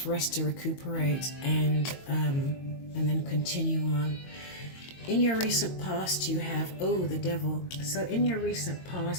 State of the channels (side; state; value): right; late; 22 ms